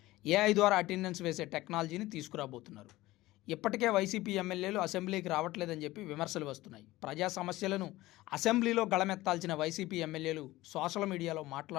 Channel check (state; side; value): quieter; right; 17.9 dB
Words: ఏఐ ద్వారా అటెండెన్స్ వేసే టెక్నాలజీని తీసుకురాబోతున్నారు. ఇప్పటికే వైసీపీ ఎమ్మెల్యేలు అసెంబ్లీకి రావట్లేదని చెప్పి విమర్శలు వస్తున్నాయి. ప్రజా సమస్యలను అసెంబ్లీలో గళమెత్తాల్సిన వైసీపీ ఎమ్మెల్యేలు సోషల్ మీడియాలో